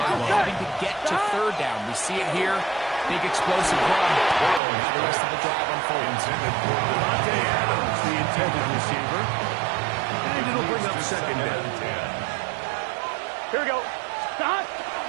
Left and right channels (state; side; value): drops out; left; at 4.6 s